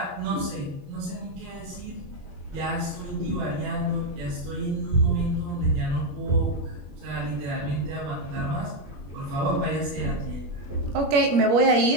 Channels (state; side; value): late; left; 21 ms